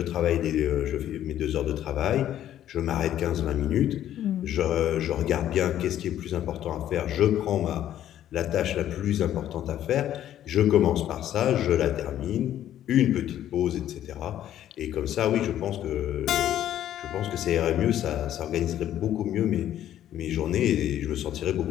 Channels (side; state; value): right; quieter; 11.6 dB